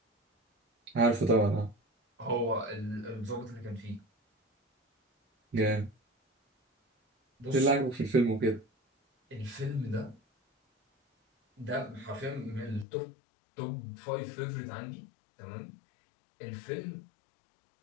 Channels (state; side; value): drops out; right; at 12.9 s